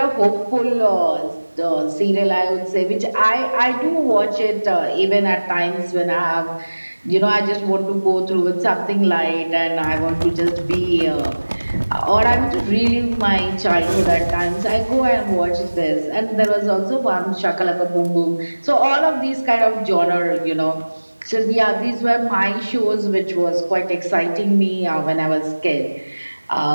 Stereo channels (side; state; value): both; inverted; correlation -1.00